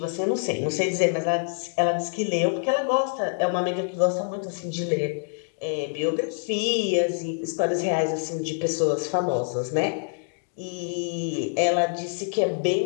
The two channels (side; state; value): right; silent; digital silence